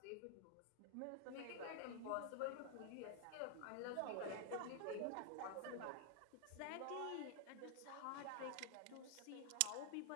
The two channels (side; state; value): both; different; correlation 0.00